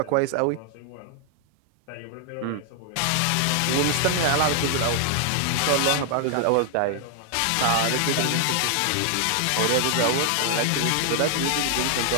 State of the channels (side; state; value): both; different; correlation 0.00